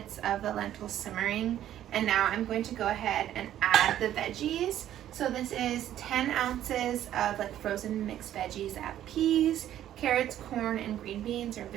of the lentils simmering, and now I'm going to go ahead and add the veggies. So this is 10 ounces of frozen mixed veggies. I have peas, carrots, corn, and green beans, or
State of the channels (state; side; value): quieter; left; 11.8 dB